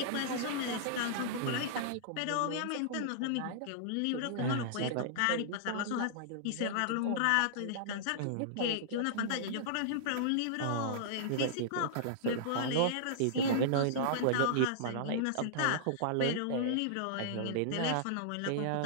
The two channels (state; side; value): different; both; correlation -0.02